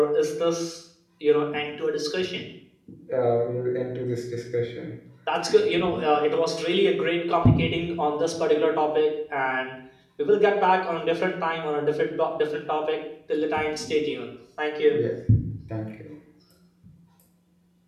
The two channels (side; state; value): both; identical; correlation 1.00